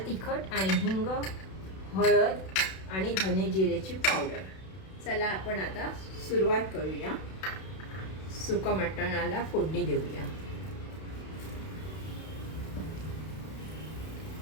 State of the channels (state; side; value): late; right; 32 ms